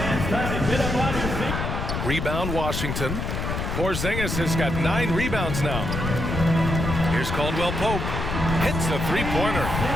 time to get up on your feet. Rebound, Washington. Porziņģis has got 9 rebounds now. Here's Caldwell Pope. Hits the three-pointer.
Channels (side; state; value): left; noise; rumble, 3 dB below the sound